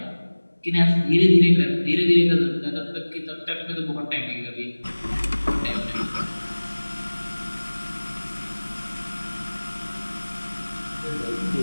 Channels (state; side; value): inverted; both; correlation -1.00